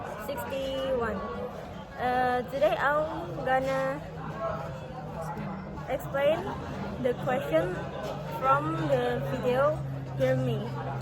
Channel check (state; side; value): identical; both; correlation 1.00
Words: Today I'm gonna explain the question from the video Hear Me.